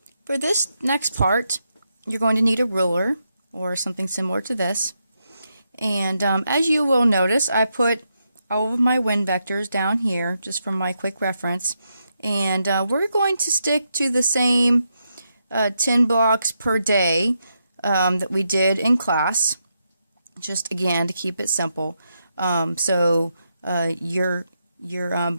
for this next part, you're going to need a ruler or something similar to this. And as you will notice, I put all of my wind vectors down here just for my quick reference. And we're going to stick to the same 10 blocks per day that we did in class, just again to keep it simple. So your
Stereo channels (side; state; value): both; inverted; correlation -0.83